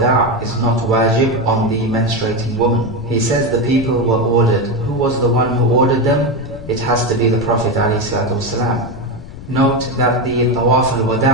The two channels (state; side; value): noise; left; rumble, 14 dB below the sound